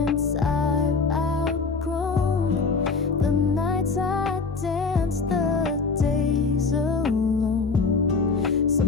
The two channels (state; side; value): quieter; right; 4.5 dB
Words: I've outgrown, the nights I danced, the days alone.